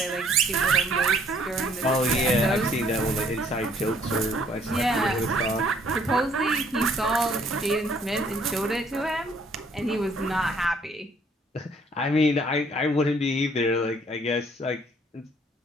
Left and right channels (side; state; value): both; normal; correlation 0.62